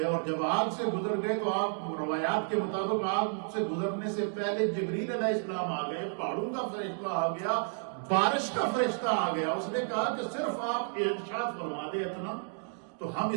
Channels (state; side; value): silent; left; 57 dB below the other